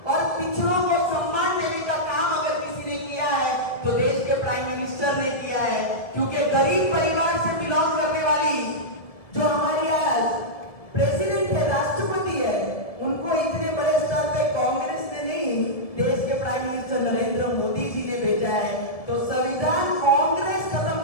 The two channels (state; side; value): late; right; 1.7 ms